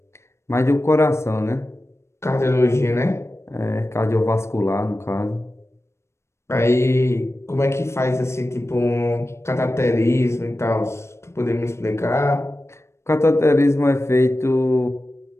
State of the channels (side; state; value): right; late; 0.13 ms